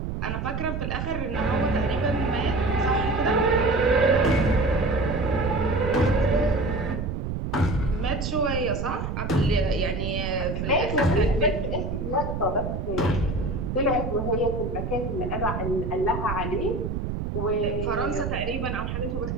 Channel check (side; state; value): right; noise; rumble, 3 dB below the sound